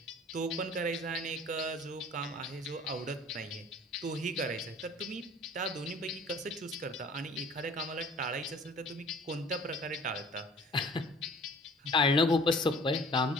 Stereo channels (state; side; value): normal; both; correlation 0.49